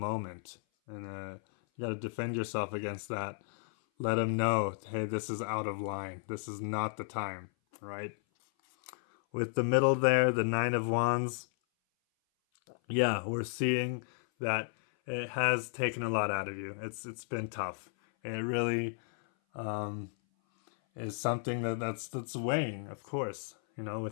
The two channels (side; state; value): right; silent; 55 dB below the other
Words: and you got to defend yourself against that. Let them know, hey, this is out of line. This is not the time, right? With the middle there, the 9 of Wands, yeah, we're seeing that it has taken a lot out of you. It's been tough. It really is something that's weighing, of course,